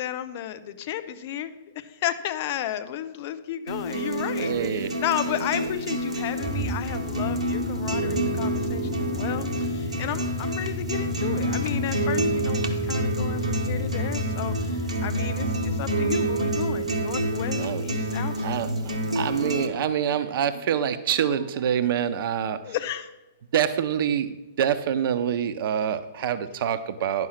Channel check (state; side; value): inverted; both; correlation -0.35